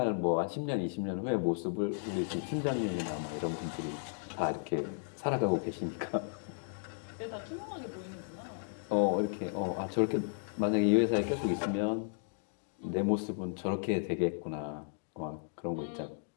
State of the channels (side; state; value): right; silent; digital silence